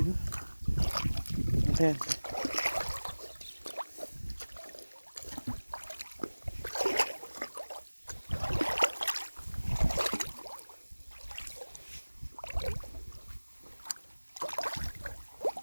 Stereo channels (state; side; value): inverted; both; correlation -1.00